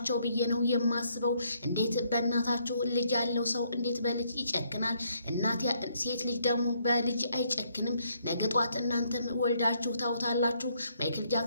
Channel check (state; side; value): inverted; both; correlation -0.70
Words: ብዬ ነው የማስበው። እንዴት በእናታችሁ ልጅ ያለው ሰው እንዴት በልጅ ይጨክናል? እናት ሴት ልጅ ደግሞ በልጅ አይጨክንም። ነገ ጧት እናንተም ወልዳችሁ ታውታላችሁ። ማይክል